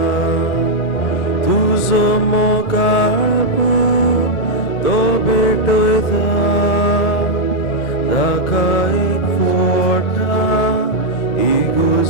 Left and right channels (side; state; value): both; normal; correlation -0.03